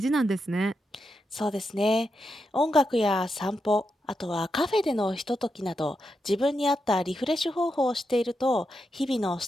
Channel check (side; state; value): both; normal; correlation 0.85